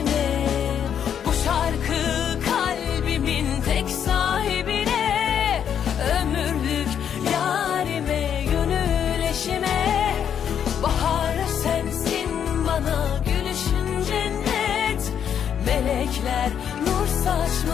Bu şarkı kalbimin tek sahibine, ömürlük yarime, gönül eşime. Bahar sensin bana, gülüşün cennet. Melekler nur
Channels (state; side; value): quieter; right; 8.6 dB